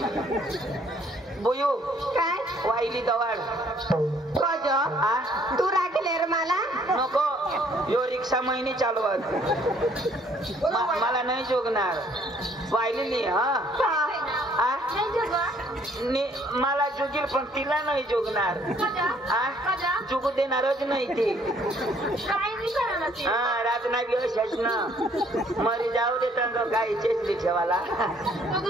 बोयो काय वाहिली दवाड कज तू राखले रे मला नको यो रिक्षा महिने चालवत मला नाही जोगणार वाहिली मला जोगील पण तिला नाही जोगणार जोगू देणारच नाही ती रात नाही बी अशाच ना मरी जाऊ दे तंग काही चेसली ठेवाला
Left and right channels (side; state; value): both; normal; correlation 0.63